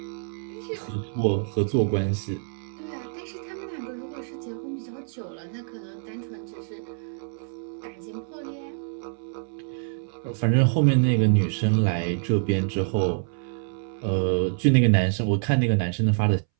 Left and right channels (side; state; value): left; silent; 61 dB below the other